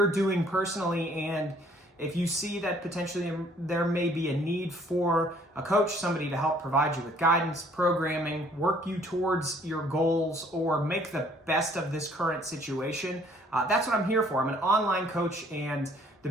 doing personally, and if you see that potentially there may be a need for a coach, somebody to help provide you with guidance, programming, work you towards your goals, or make the best of this current situation. That's what I'm here for. I'm an online coach, and the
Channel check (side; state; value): both; normal; correlation 0.59